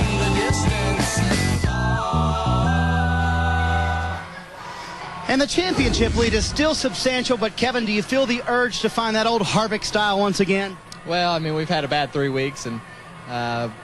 the distance. And the championship lead is still substantial, but Kevin, do you feel the urge to find that old Harvick style once again? Well, I mean, we've had a bad 3 weeks, and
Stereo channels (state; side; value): identical; both; correlation 1.00